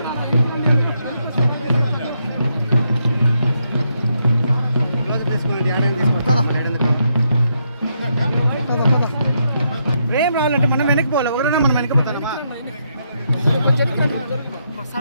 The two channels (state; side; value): inverted; both; correlation -0.79